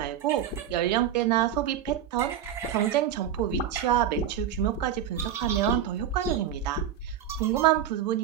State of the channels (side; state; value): left; quieter; 9.6 dB